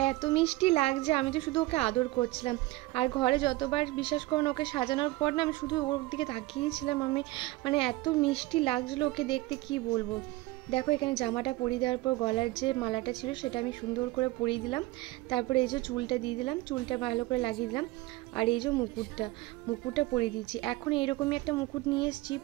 এত মিষ্টি লাগছে, আমি তো শুধু ওকে আদর করছিলাম। আর ঘরে যতবার বিশ্বাস করুন ওকে সাজানোর পর না আমি শুধু ওর দিকে তাকিয়েছিলাম, আমি মানে এত মিষ্টি লাগছিলো ওকে দেখতে, কি বলবো। দেখো এখানে জামাটা পরিয়ে দেওয়ার পর গলার যে মালাটা ছিল সেটা আমি সুন্দর করে পরিয়ে দিলাম। তারপরে এই যে চুলটা দিয়ে দিলাম, চুলটা ভালো করে লাগিয়ে দিলাম। আর এই যে মুকুটটা পরিয়ে দিচ্ছি। এখন এইরকমই একটা মুকুট নিয়ে এসেছি,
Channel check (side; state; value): left; quieter; 19.5 dB